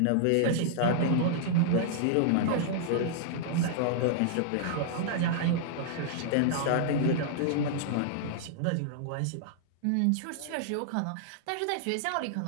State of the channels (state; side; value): different; both; correlation -0.01